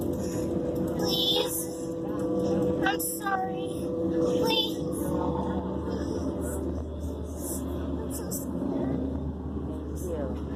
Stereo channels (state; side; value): identical; both; correlation 1.00